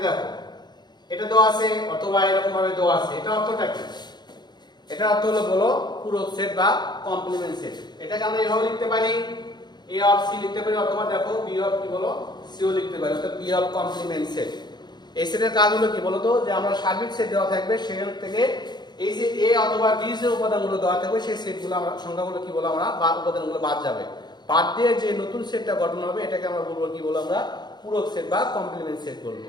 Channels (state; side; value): late; right; 0.21 ms